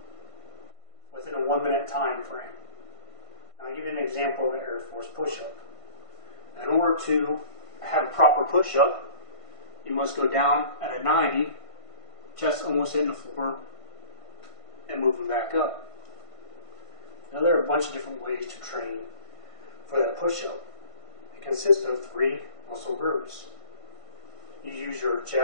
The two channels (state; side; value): late; right; 1.5 ms